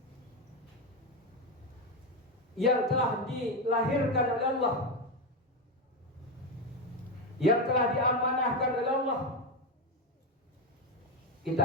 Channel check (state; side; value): normal; both; correlation 0.11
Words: yang telah dilahirkan oleh Allah, yang telah diamanahkan oleh Allah,